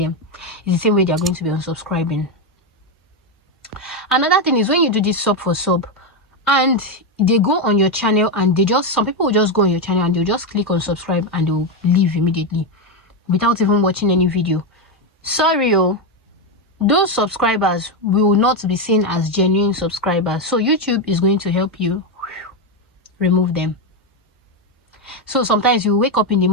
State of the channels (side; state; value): both; normal; correlation 0.08